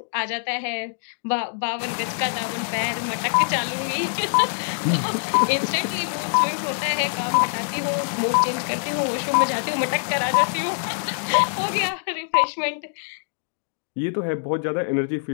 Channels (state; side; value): silent; right; digital silence